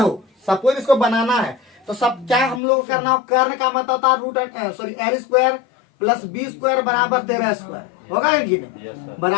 सपोज इसको बनाना है, तो सब क्या हम लोग को करना हो, कर्ण का मतलब होता है root l square plus b square बराबर 13 स्क्वायर होगा कि नहीं,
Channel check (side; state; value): right; drops out; at 2.6 s